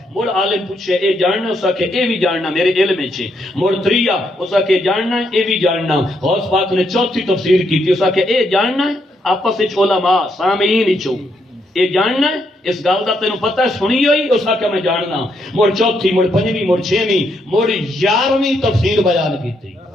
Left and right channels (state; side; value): normal; both; correlation 0.76